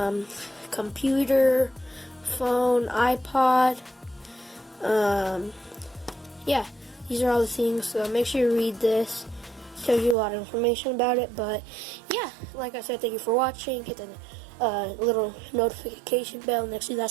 computer, phone, iPod. Yeah, these are all the things, so make sure you read this. It tells you a lot of information about it. But yeah, like I said, thank you for watching. Hit the little notification bell next to that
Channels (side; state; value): left; drops out; at 10.2 s